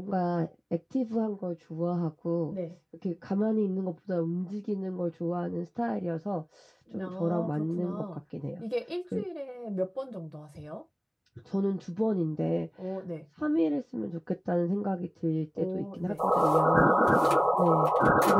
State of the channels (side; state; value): both; identical; correlation 1.00